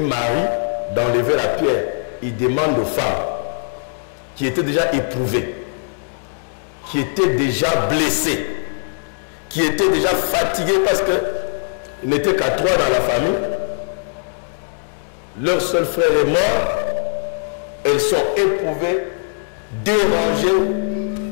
Marie d'enlever la pierre. Il demande aux femmes qui étaient déjà éprouvées, qui étaient déjà blessées, qui étaient déjà fatiguées parce qu'ils n'étaient qu'à 3 dans la famille. Leur seul frère est mort. Elles sont éprouvées, dérangées.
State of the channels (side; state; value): right; silent; digital silence